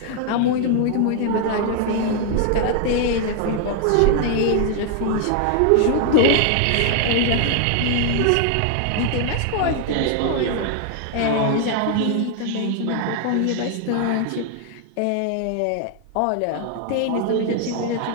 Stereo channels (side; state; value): both; different; correlation 0.00